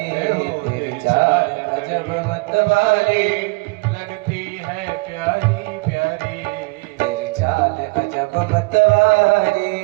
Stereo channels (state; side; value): quieter; left; 27.3 dB